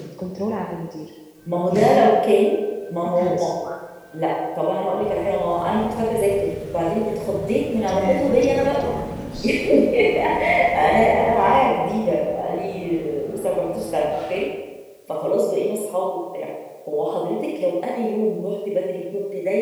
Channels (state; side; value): identical; both; correlation 1.00